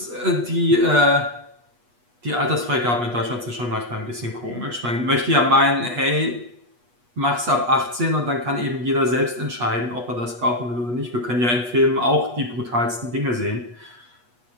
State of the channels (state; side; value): late; left; 8.3 ms